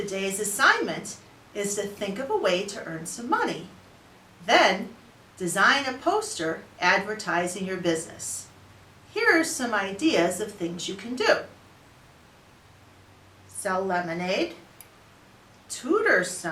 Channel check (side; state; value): both; identical; correlation 1.00